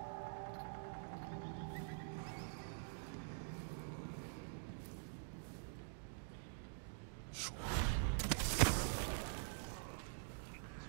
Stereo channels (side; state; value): left; silent; digital silence